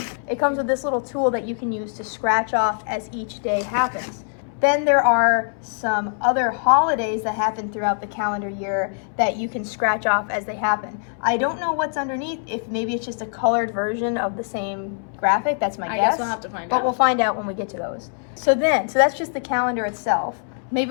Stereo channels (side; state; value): right; silent; 64 dB below the other